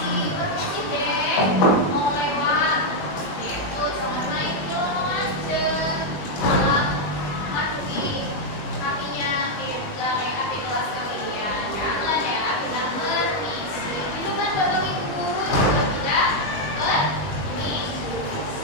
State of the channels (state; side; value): late; right; 20 ms